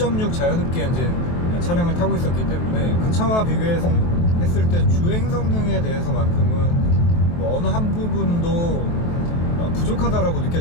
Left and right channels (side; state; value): right; late; 23 ms